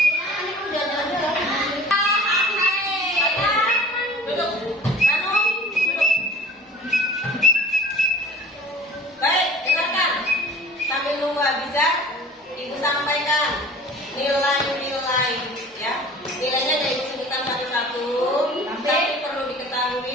Baik, dengarkan. Sambil nunggu Abizar, Ibu sampaikan nilai-nilai ya. Nilainya dari sebutkan satu-satu, tapi perlu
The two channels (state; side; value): normal; both; correlation 0.44